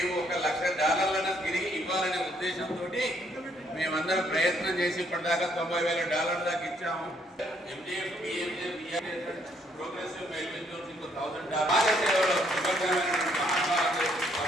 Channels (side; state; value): both; normal; correlation 0.69